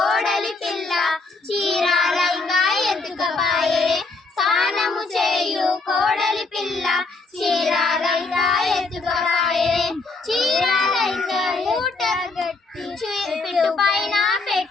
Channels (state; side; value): quieter; right; 3.6 dB